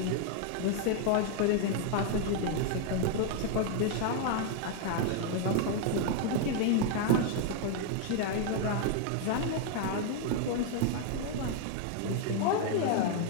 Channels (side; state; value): both; different; correlation 0.00